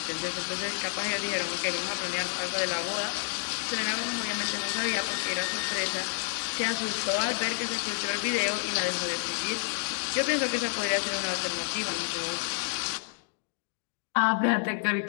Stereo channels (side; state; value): right; silent; digital silence